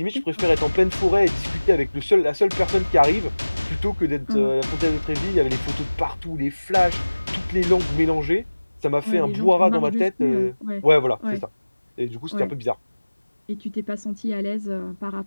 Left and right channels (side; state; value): both; inverted; correlation -1.00